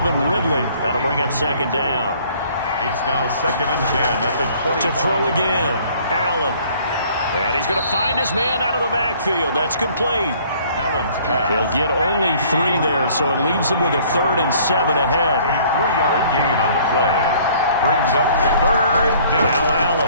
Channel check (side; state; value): both; inverted; correlation -0.56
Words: Ridley. That'll bring up 2nd down. It's now 2nd and 10 at the 20. To throw again, Allen. And he's going to find his man out of the backfield. That's complete. Allen's pass. He'll get only 3 there, so it leaves him with a 3rd and 7 ahead. A 3-yard gain on the play. Brings up 3rd down. Now